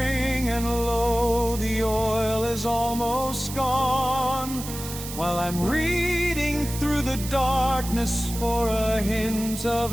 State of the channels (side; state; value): right; noise; hiss, 10 dB below the sound